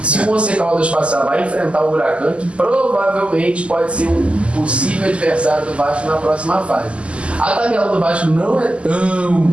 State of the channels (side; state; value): left; late; 0.056 ms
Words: Se o Once Caldas passar, vai enfrentar o Huracan, que provavelmente pode ser um possível adversário do Vasco na próxima fase. A tabela do Vasco não é